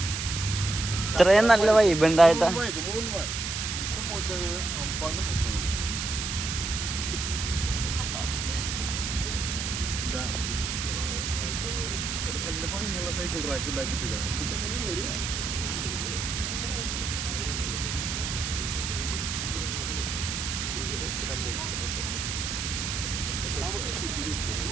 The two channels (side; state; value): right; noise; hiss, 3 dB below the sound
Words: ഇത്രയും നല്ല വൈബ് ഉണ്ടായിട്ടാ. സൈക്കിൾ ട്രാക്ക് ഉണ്ടാക്കിട്ട്